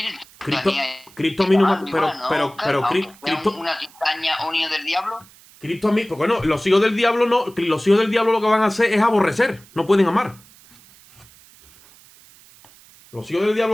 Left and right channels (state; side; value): noise; right; hiss, 25 dB below the sound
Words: Cristo a mí no me... Pero Cristo... ¿Una cizaña o un hijo del diablo? Cristo a mí... Porque bueno, los hijos del diablo no... Los hijos del diablo lo que van a hacer es aborrecer. No pueden amar. Los hijos del